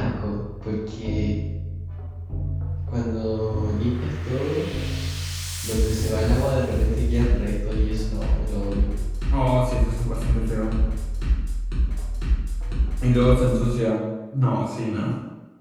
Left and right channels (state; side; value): identical; both; correlation 1.00